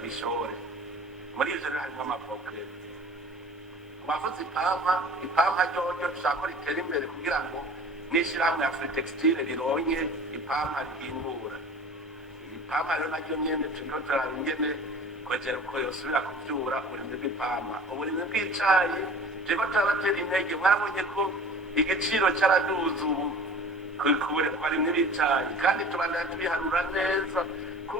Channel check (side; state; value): both; normal; correlation 0.42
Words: Muri ivyo rero harimwo amavoka. Bavuze ipampa ryoryo dushaka ko ritera imbere kugira ngo n'ishirahamwe ya Free Textile rironke ipampa rihingura. Ipampa rero naryo nyene turiko turaraba ingene kongera uko yosubira kuvyura uburimyi bw'ipampa. Uburimyi bw'icayi turiko turabatera intege, mwarabonye ko igiciro caraduze ubu ku barimyi b'icayi, kandi tubandanya tubiharura neza